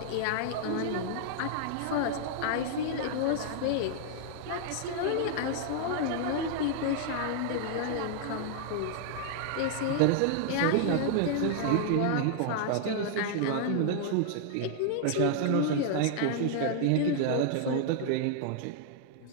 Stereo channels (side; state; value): both; different; correlation -0.01